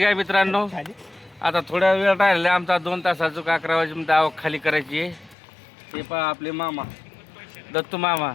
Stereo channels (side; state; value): right; drops out; at 5.4 s